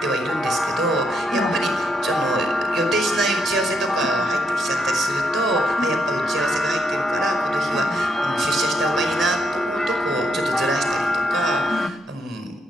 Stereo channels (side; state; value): both; normal; correlation 0.77